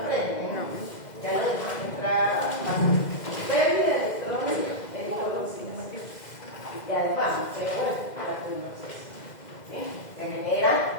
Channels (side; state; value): right; late; 2.0 ms